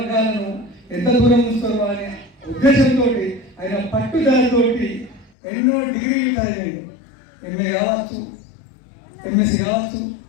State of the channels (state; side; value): drops out; right; at 5.3 s